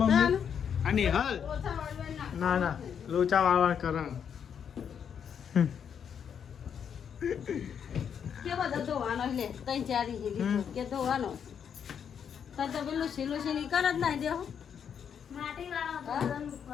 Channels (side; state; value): right; quieter; 7.8 dB